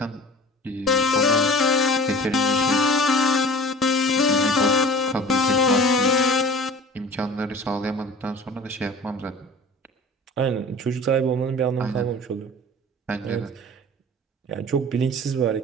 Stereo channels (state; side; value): normal; both; correlation 0.41